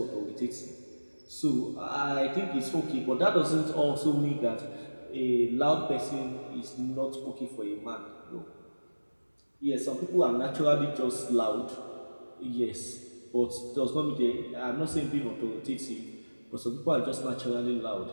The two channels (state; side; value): inverted; both; correlation -1.00